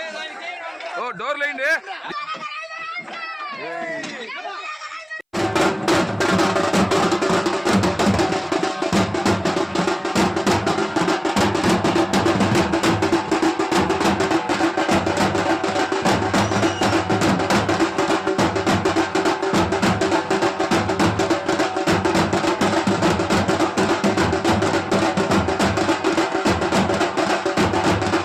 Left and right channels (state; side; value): identical; both; correlation 1.00